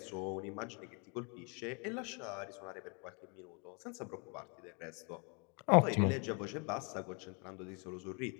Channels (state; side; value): quieter; right; 34.5 dB